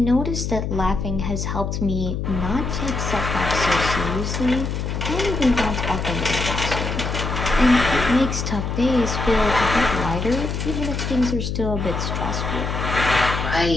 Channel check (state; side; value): noise; left; hum, 3 dB below the sound